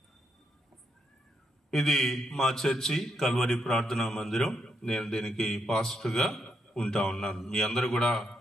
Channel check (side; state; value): both; normal; correlation 0.79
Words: ఇది మా చర్చి కల్వరి ప్రార్థనా మందిరం. నేను దీనికి పాస్టర్గా ఉంటా ఉన్నాను. మీ అందరూ కూడా